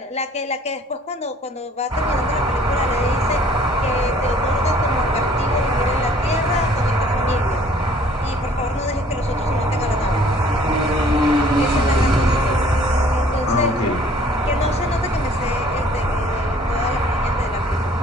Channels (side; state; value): both; normal; correlation 0.56